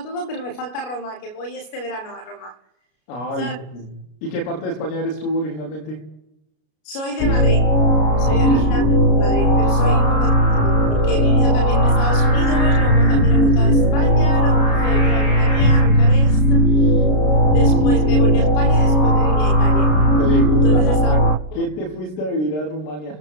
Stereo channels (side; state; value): right; late; 33 ms